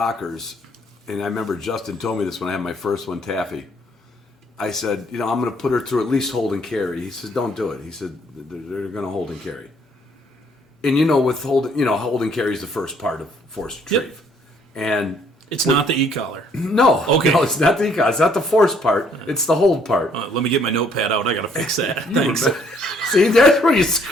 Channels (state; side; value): normal; both; correlation 0.64